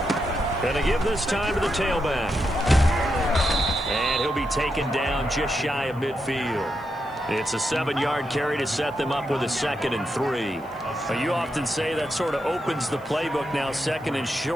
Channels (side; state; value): right; noise; hiss, 29 dB below the sound